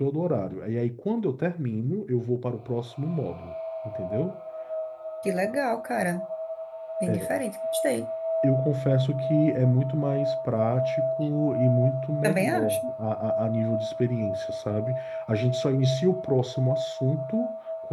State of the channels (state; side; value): identical; both; correlation 1.00